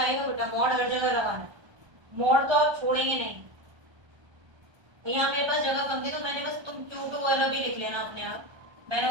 बेटा, मॉड हर जगह लगाना, मॉड तो आप छोड़ेंगे नहीं। यहाँ मेरे पास जगह कम थी तो मैंने बस तुम Q2 वाला भी लिख लेना अपने आप, मैंने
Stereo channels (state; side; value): late; left; 1.3 ms